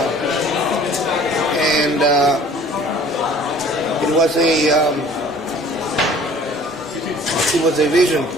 and it was a vision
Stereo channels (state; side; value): normal; both; correlation 0.50